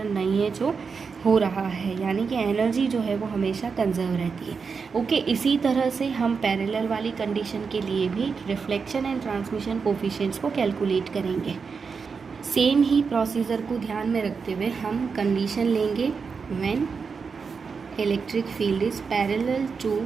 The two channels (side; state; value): left; quieter; 5.4 dB